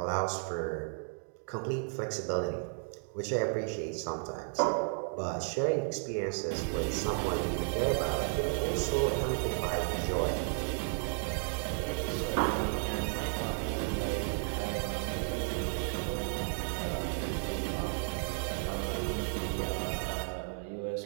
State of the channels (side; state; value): left; silent; 55 dB below the other